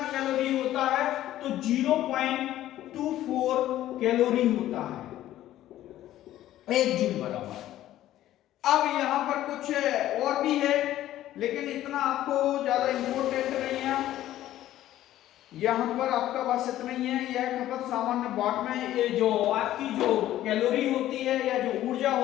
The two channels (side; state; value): right; quieter; 13.5 dB